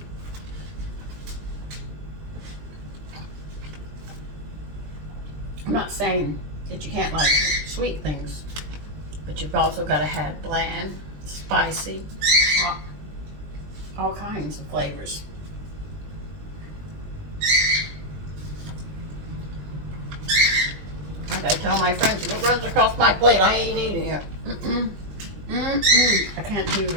I'm not saying that you can't like sweet things, but you've also got to have bland, spicy, hot, all kinds of flavors. I gotta tell my friends, if it runs across my plate, I ain't eating it. I can't do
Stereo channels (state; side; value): late; left; 20 ms